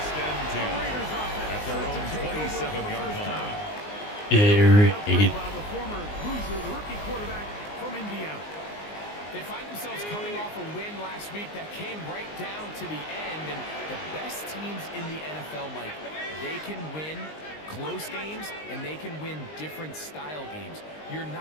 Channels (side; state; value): right; late; 19 ms